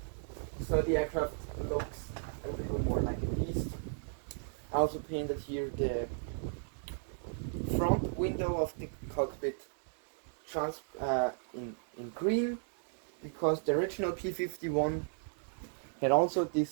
so the aircraft looks a little more like a beast. I also painted here the front window of the cockpit in green, because the original P51 had also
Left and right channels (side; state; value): left; silent; digital silence